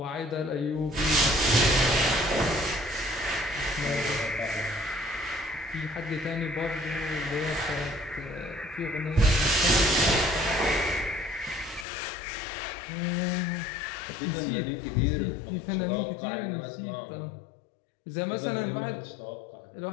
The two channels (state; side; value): drops out; right; at 11.9 s